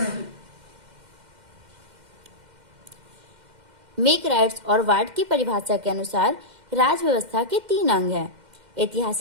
मेक राइट्स और वार्ड की परिभाषा के अनुसार राज व्यवस्था के 3 अंग हैं:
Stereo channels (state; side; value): late; left; 2.1 ms